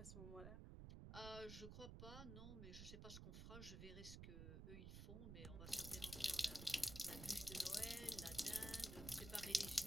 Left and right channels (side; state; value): right; noise; rumble, 7 dB below the sound